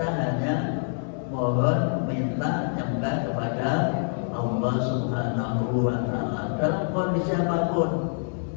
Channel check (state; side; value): silent; right; digital silence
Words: hanya mohon minta nyembah kepada Allah Subhanahu wa Ta'ala dalam kondisi apapun.